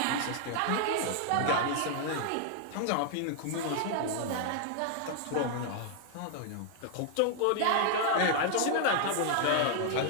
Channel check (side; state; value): both; different; correlation 0.00